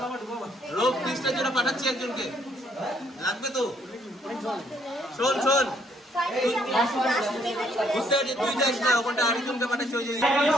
রোগ টেস্টের জন্য পাঠাচ্ছি একজনকে, লাগবে তো। শোন শোন, বুঝতে পারছি তুই যাস না, ওখানটা আরেকজনকে পাঠাচ্ছি। ওই যে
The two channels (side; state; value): both; normal; correlation 0.68